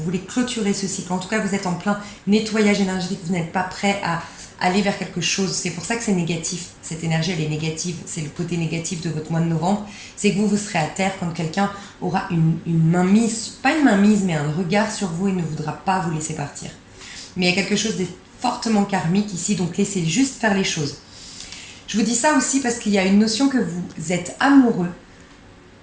voulez clôturer ce cycle. En tout cas, vous êtes en plein nettoyage énergétique, vous n'êtes pas prêt à aller vers quelque chose. C'est pour ça que c'est négatif. Cette énergie, elle est négative. C'est le côté négatif de votre mois de novembre. C'est que vous serez à terre quand quelqu'un aura une mainmise, pas une mainmise, mais un regard sur vous et ne voudra pas vous laisser partir. Mais il y a quelque chose de fortement karmique ici, donc laissez juste faire les choses. Je vous dis ça aussi parce qu'il y a une notion que vous êtes amoureux.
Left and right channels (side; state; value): both; identical; correlation 1.00